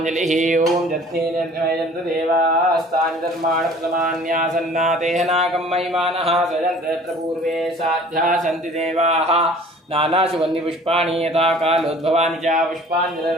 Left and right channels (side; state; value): both; normal; correlation 0.49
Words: ओम जत्नेन देवास्तानि धर्माणि प्रथमान्यासन्नातेह नागं महिमानः सजन्तत्र पूर्वे साध्या सन्ति देवाः नानासुगन्धि पुष्पाणि यथा कालोद्भवानि च